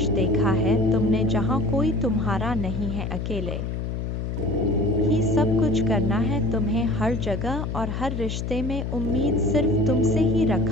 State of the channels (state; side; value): noise; left; hum, 3 dB below the sound